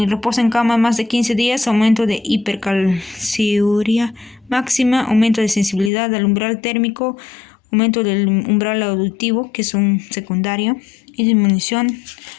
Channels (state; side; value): drops out; right; at 5.9 s